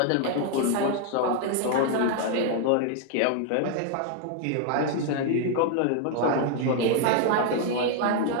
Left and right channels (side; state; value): both; different; correlation 0.00